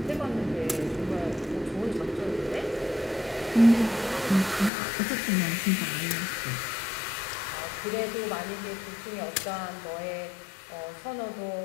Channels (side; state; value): right; drops out; at 4.7 s